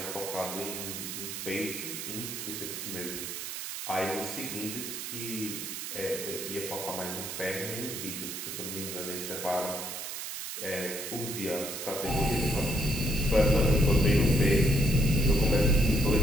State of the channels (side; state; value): right; noise; hiss, 6 dB below the sound